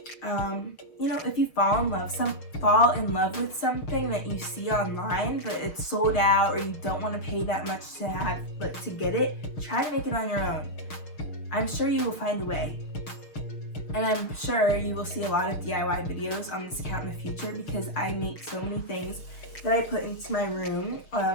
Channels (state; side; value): late; right; 6.5 ms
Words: You know, if you fall in love with something that you see online, but it's sold out or you don't want to pay that much to get it, try to make it on your own. I'm sure you will find a way. And I'm sure you will see a lot of DIY videos on this account in the future because I make so many things that I put into my room.